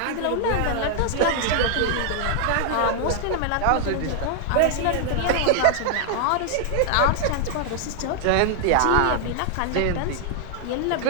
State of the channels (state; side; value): different; both; correlation 0.00